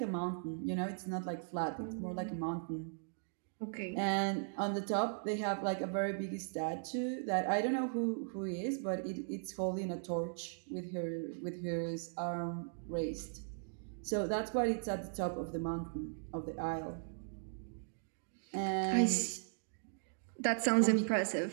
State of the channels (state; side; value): silent; left; digital silence